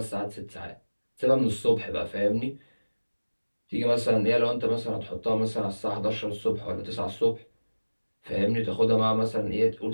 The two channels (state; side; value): inverted; both; correlation -1.00